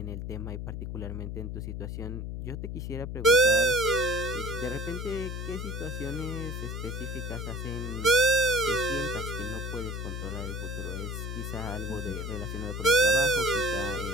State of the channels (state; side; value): noise; left; hum, 5 dB below the sound